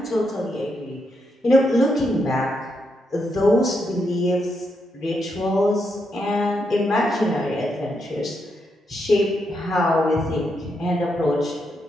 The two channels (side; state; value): both; normal; correlation 0.81